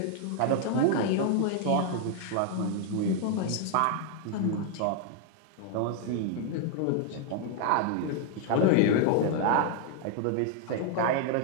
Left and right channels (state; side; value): different; both; correlation 0.00